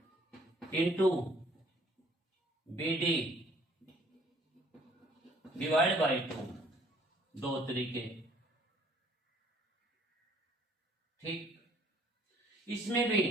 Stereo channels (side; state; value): both; normal; correlation 0.59